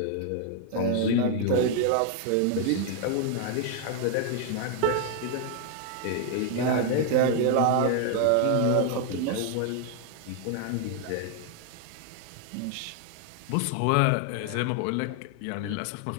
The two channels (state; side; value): different; both; correlation 0.00